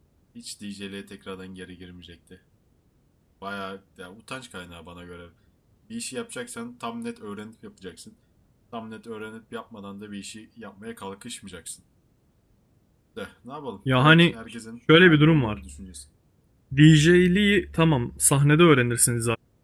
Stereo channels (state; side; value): identical; both; correlation 1.00